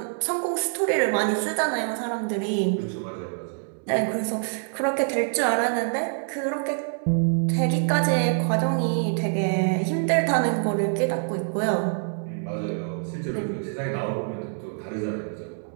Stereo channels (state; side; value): silent; left; 61 dB below the other